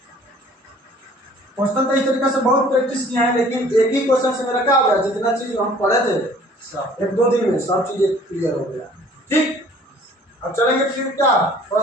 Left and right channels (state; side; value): normal; both; correlation 0.53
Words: क्वेश्चन तो इस तरीके से बहुत प्रैक्टिस किया है, लेकिन एक ही क्वेश्चन से मेरा क्या हो गया, जितना चीज हम पढ़े थे 1-2 दिन में सब चीजें क्लियर हो गया। ठीक, अब चलेंगे फिर क्या